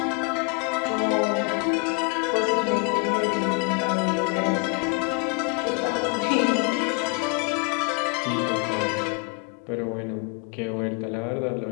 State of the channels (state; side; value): quieter; right; 34.3 dB